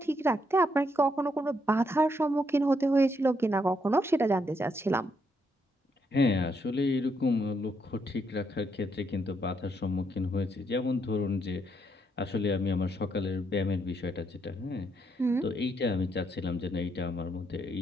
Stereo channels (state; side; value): normal; both; correlation 0.76